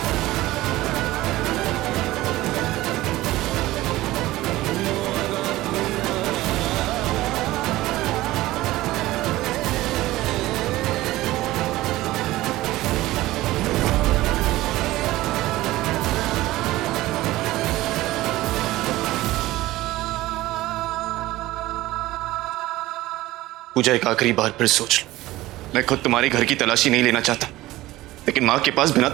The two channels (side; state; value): left; quieter; 17.2 dB